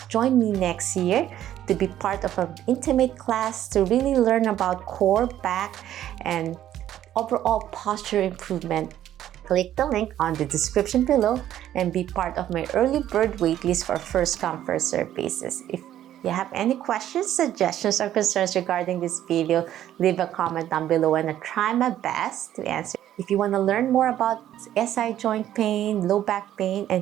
join me next year to be part of an intimate class to really learn about core, back, and overall posture improvement, click the link on the description below and be part of my early bird waitlist for first come first serve basis. If you have any questions, suggestions, or concerns regarding this video, leave a comment down below and I'll try my best to answer. If you want to learn more about SI joint pain, low back pain,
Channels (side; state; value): left; quieter; 11.9 dB